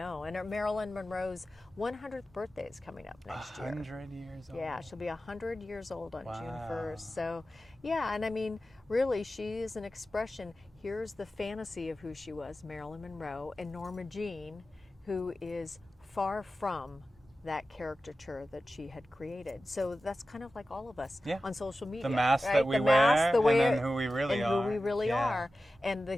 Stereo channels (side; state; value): both; normal; correlation 0.94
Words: And Marilyn Monroe's 100th birthday is coming up next year. 100 years old. Yeah, she'll be 100 years old on June Wow. 1st. So, yeah, and I mean, really, she is an expression. Here's the fantasy of who she was, Marilyn Monroe, and Norma Jean, who is far from that caricature that she had created. So that's kind of like all of us on social media. The mask right? that we the wear, mask, the way, and then who we really are. Who we really Yeah. are. And the